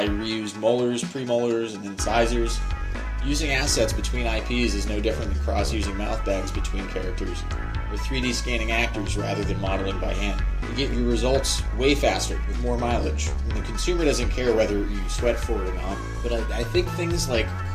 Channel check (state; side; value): identical; both; correlation 1.00